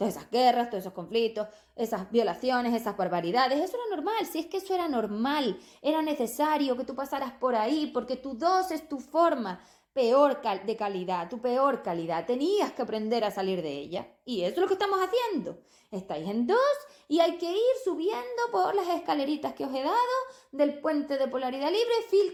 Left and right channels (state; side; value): identical; both; correlation 1.00